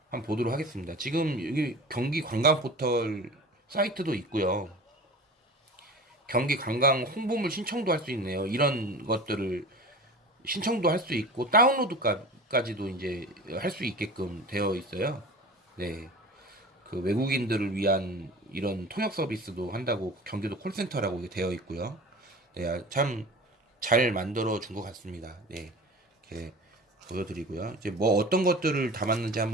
한번 보도록 하겠습니다. 지금 여기 경기 관광 포털 사이트도 있고요. 경기 관광 홍보물 신청도 할 수 있네요. 이런 것들을 신청도 할 수 있고 다운로드까지도 이제 할 수 있게끔 되어 있어요. 네. 그 외국인들을 위한 이런 통역 서비스도 한다고 경기도 콜센터라고 이게 되어 있고요. 네, 참 잘 만들어 준 것 같습니다. 네. 이렇게 보여드리고요. 이제 뭐 어떤 것들을 담았는지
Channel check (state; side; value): normal; both; correlation 0.36